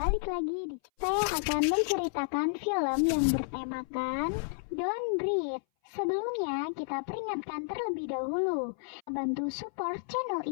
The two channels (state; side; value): silent; right; 57 dB below the other